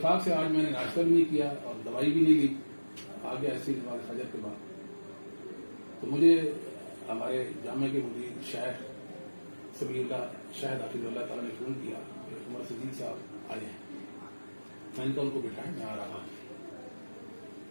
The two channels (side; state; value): both; inverted; correlation -1.00